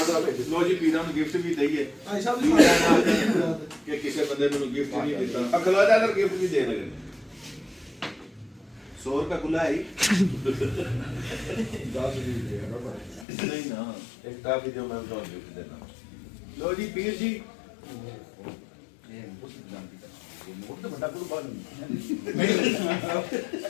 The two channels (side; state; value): right; drops out; at 13.2 s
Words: ਦਾ ਲੋ ਜੀ ਪੀਰਾਂ ਨੂੰ ਗਿਫਟ ਵੀ ਦਈਏ ਭਾਈ ਸਾਹਿਬ ਦੀ ਕਿ ਕਿਸੇ ਬੰਦੇ ਨੂੰ ਗਿਫਟ ਨਹੀਂ ਦਿੱਤਾ ਅਗਲਾ ਦਾ ਗਿਫਟ ਵੀ ਦੇ ਲਗੇ 100 ਰੁਪਏ ਖੁੱਲਾ ਹੈ ਨਹੀਂ ਨਾ ਇੱਕ ਕਾਫੀ ਜੋ ਮੈਂ ਤੁਹਾਨੂੰ ਗਿਫਟ ਦੇਣਾ ਲੋ ਜੀ ਪੀਰ ਜੀ